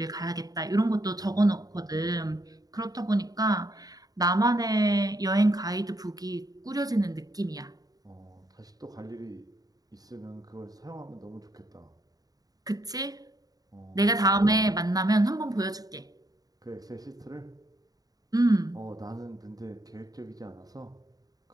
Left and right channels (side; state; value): left; late; 0.18 ms